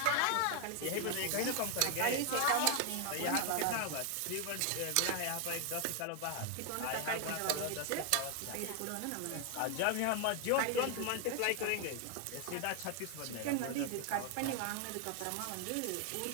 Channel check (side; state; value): both; different; correlation 0.00